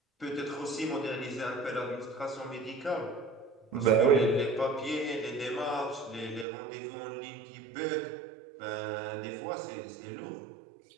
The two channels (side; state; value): left; drops out; at 6.5 s